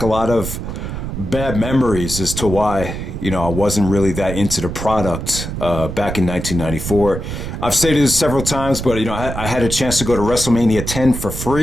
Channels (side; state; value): right; noise; rumble, 6 dB below the sound